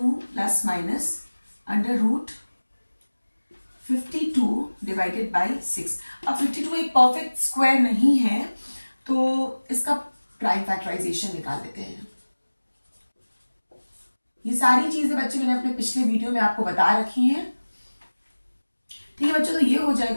plus minus under root 52 divided by 6। अब 52 एक परफेक्ट स्क्वायर नहीं है तो इसका प्राइम फैक्टराइजेशन निकाल लेते हैं। ये सारी चीजें बच्चे मैंने अपने पिछले वीडियो में आपको बता रखी हैं। ठीक है बच्चों, तो ये हो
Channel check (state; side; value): inverted; both; correlation -1.00